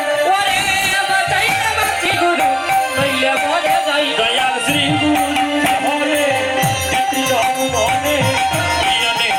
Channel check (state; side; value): identical; both; correlation 1.00